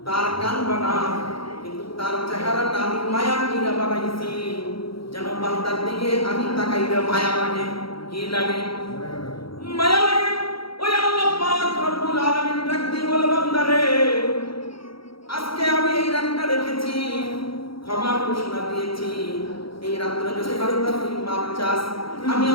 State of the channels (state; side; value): late; right; 0.75 ms